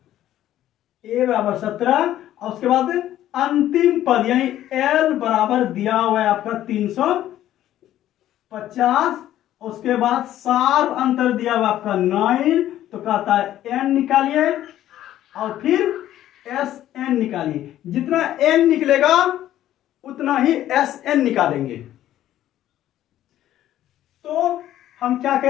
ए बराबर 17, और उसके बाद अंतिम पद यानी एल बराबर दिया हुआ है आपका 350, उसके बाद सार्व अंतर दिया हुआ आपका 9, तो कहता है एन निकालिए और फिर एस एन निकालिए। जितना एन निकलेगा उतना ही एस एन निकालेंगे। तो हम क्या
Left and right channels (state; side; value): quieter; right; 12.7 dB